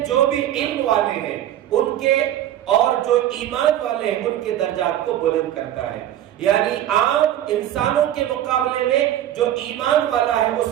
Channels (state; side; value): quieter; left; 12.0 dB